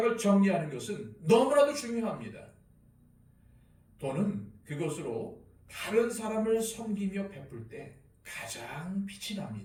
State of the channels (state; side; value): identical; both; correlation 1.00